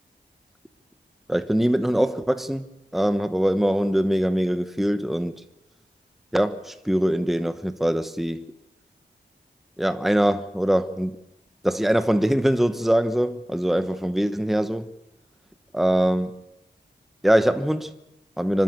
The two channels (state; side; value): normal; both; correlation 0.98